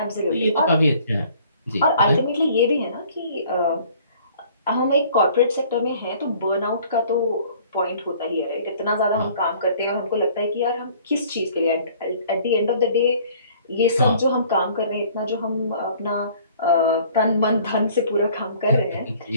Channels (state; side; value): inverted; both; correlation -0.54